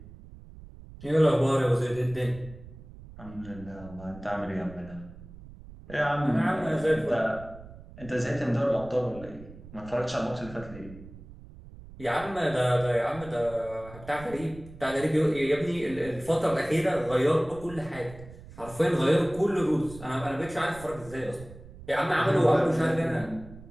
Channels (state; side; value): noise; right; rumble, 17 dB below the sound